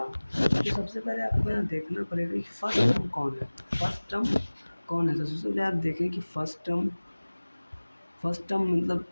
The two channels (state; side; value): inverted; both; correlation -1.00